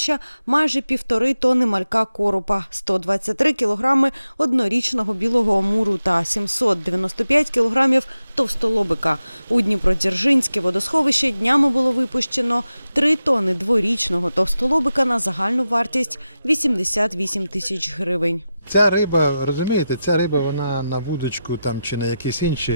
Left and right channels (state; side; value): inverted; both; correlation -0.91